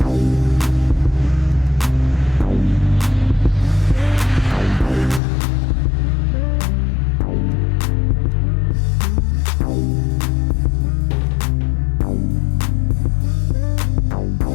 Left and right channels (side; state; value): right; drops out; at 5.2 s